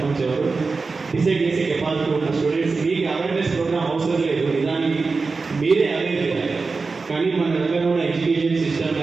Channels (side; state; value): left; quieter; 4.2 dB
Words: ఎవరు డిసైడ్ చేసే కెపాసిటీ ఉన్న స్టూడెంట్స్ మీకు అవేర్నెస్ ప్రోగ్రామ్ అవసరం లేదు. నిజానికి మీరే అవేర్ చేయాలి. కానీ మన దగ్గర ఉన్న ఎడ్యుకేషన్ సిస్టమ్